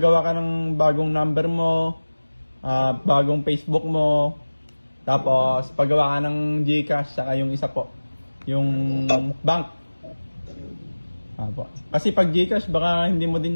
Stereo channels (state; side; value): inverted; both; correlation -1.00